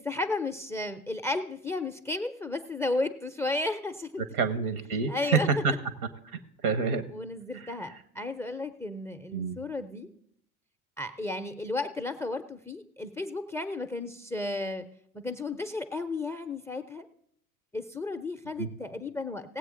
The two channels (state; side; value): normal; both; correlation 0.36